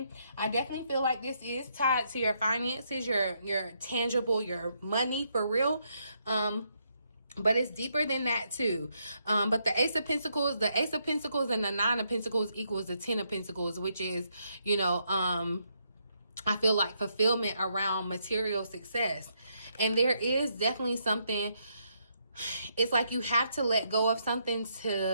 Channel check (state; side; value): inverted; both; correlation -0.76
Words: I definitely feel like this is tied to your finances, your tangible, your money for real. But it's deeper than that too. But the Ace of Pentacles and the 9 of Pentacles equals the 10 of Pentacles, which is, you know, I feel like fulfillment around material success. And there is definitely something, it's like you have to let go of something